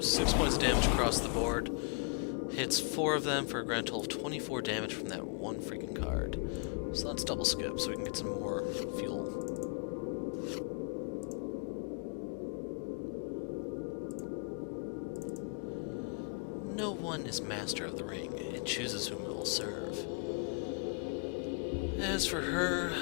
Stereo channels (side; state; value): right; quieter; 37.8 dB